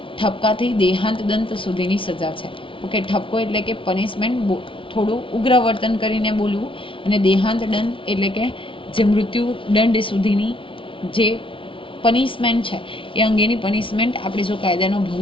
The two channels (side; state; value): right; late; 0.25 ms